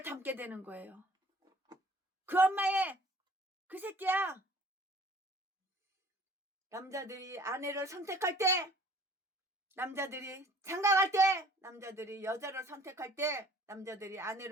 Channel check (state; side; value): normal; both; correlation 0.52